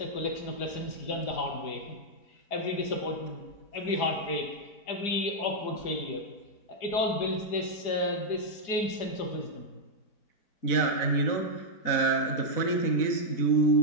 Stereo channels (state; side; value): late; right; 4.8 ms